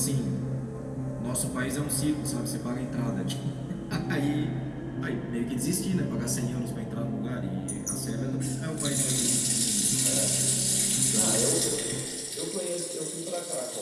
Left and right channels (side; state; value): both; identical; correlation 1.00